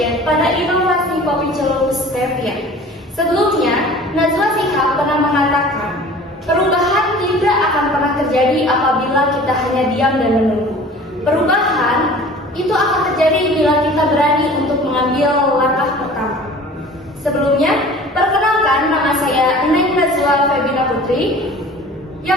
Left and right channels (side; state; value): both; normal; correlation 0.44